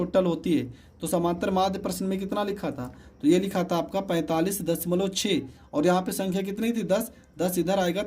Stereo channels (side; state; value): both; identical; correlation 1.00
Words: होती है। तो समांतर माध्य प्रश्न में कितना लिखा था, तो ये लिखा था आपका 45.6 और यहाँ पे संख्या कितनी थी 10, 10 इधर आएगा